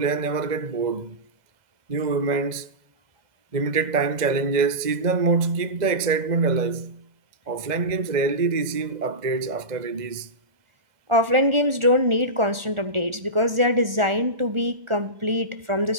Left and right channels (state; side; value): late; left; 1.4 ms